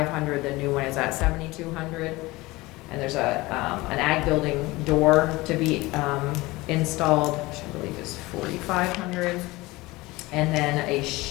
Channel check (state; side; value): quieter; right; 20.9 dB